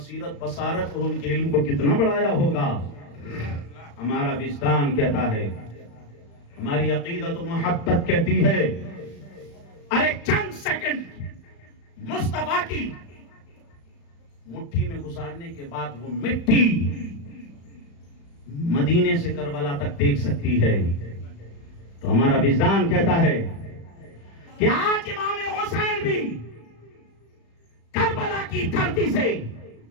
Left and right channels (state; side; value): late; right; 35 ms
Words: بصارت اور ان کے علم کو کتنا بڑھایا ہوگا۔ ہمارا وجدان کہتا ہے، ہماری عقیدت و محبت کہتی ہے، ارے چند سیکنڈ مصطفیٰ کی مٹھی میں گزارنے کے بعد وہ مٹی مدینے سے کربلا تک دیکھ سکتی ہے، تو ہمارا وجدان کہتا ہے کہ آج امام حسین بھی کربلا کی دھرتی سے